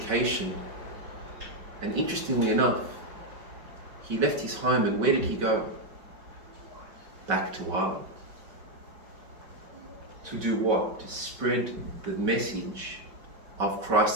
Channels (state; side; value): late; left; 5.3 ms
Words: And interestingly enough, he left his home, and where did he go? Back to Ireland. To do what? To spread the message of